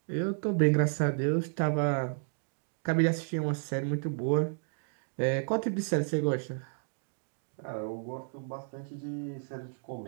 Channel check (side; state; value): left; silent; digital silence